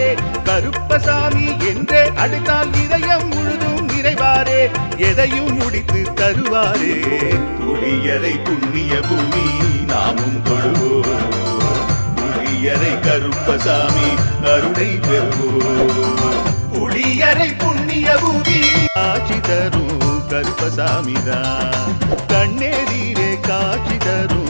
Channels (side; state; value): both; inverted; correlation -1.00